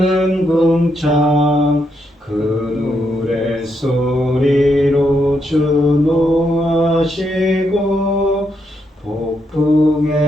궁창 그 노래 소리로 주노하시고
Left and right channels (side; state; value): both; normal; correlation 0.79